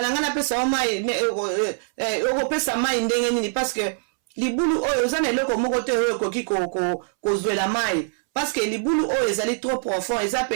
na nga napesa yo mai okopesa mai ndenge nini parce que libulu oyo oza na eloko moko te oyo ekoki kozwela mai parce que libulu oyo ezali trop profond eza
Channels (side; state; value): left; silent; 63 dB below the other